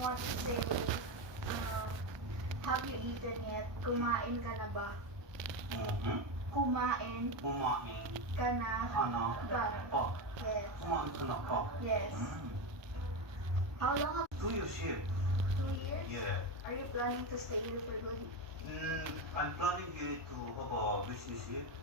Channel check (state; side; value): late; left; 1.2 ms